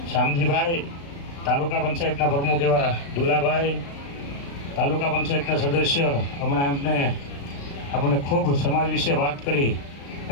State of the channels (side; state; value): right; late; 36 ms